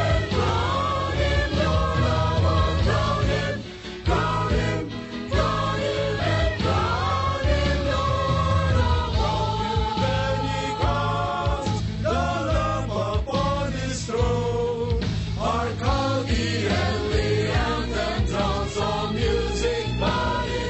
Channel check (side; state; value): both; identical; correlation 1.00